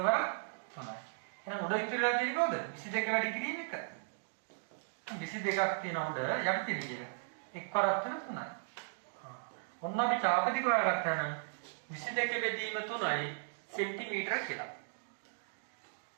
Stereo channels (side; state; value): left; silent; digital silence